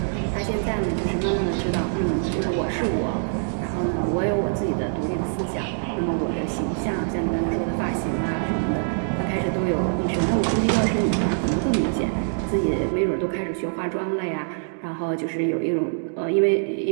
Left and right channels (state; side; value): silent; left; digital silence